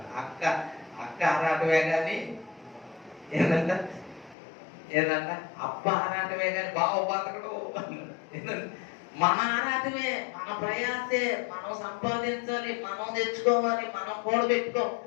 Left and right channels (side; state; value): right; drops out; at 4.4 s